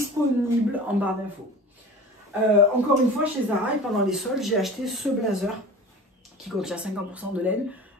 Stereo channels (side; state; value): both; normal; correlation 0.38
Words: en barre d'infos. Encore une fois, chez Zara et pendant les soldes, j'ai acheté ce blazer qui contient 50% de laine,